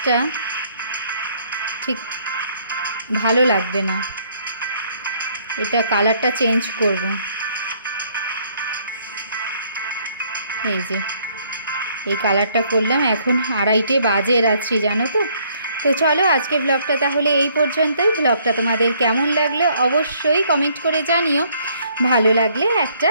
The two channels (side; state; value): both; inverted; correlation -0.65